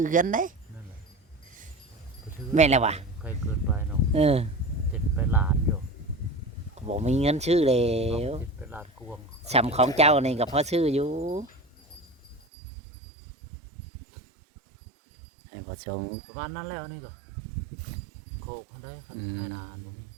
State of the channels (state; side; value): drops out; left; at 12.4 s